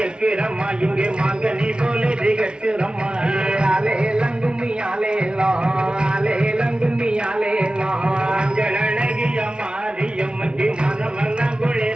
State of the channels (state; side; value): late; left; 0.055 ms